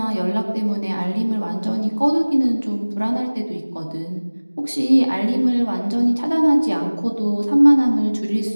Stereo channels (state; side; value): inverted; both; correlation -1.00